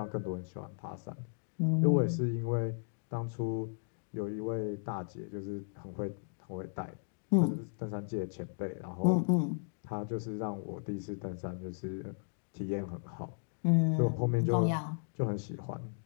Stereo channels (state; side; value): silent; right; digital silence